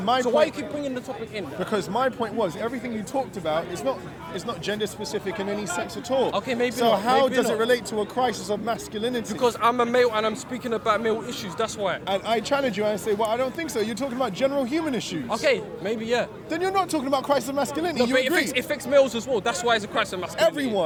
my so why you point- keep bringing the topic in? Because my point was everything you talked about is not gender specific in any sense at all. Okay, maybe So not, how maybe does not. it relate to a crisis of masculinity? Because I'm a male and I'm speaking about male issues. That's why. and I challenge you and I say, well, I don't think so. You're talking about general human issues. Okay, maybe yeah. Then you're not talking about crisis of masculinity. No, You but agree? it affects males as well. That's why it's a crisis of masculinity.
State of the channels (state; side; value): identical; both; correlation 1.00